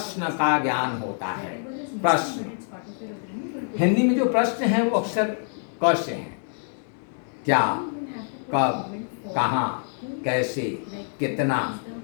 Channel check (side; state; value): right; silent; 61 dB below the other